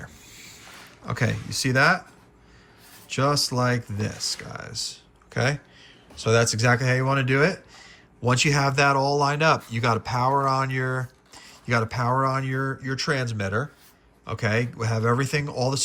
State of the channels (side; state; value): both; identical; correlation 1.00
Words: Okay, you see that? Just like this, guys. Okay? So that's exactly how you want to do it. Once you have that all lined up, you got to power on your transmitter. Okay? We have everything, all the